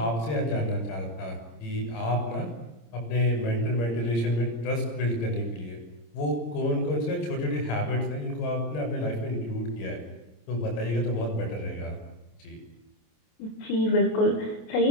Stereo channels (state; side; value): late; right; 26 ms